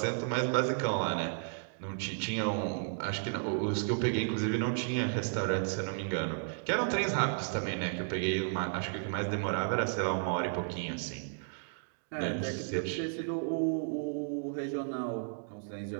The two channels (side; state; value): left; silent; digital silence